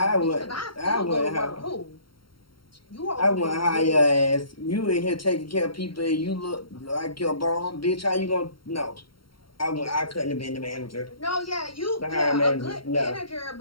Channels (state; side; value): late; right; 0.73 ms